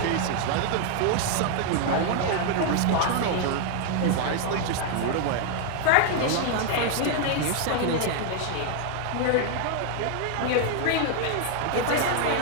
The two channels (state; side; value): different; both; correlation 0.00